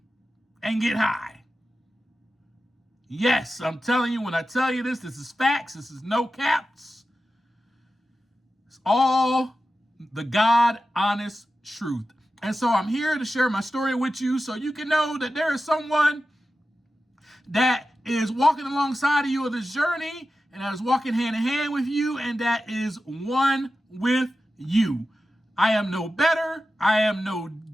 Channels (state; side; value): normal; both; correlation 0.92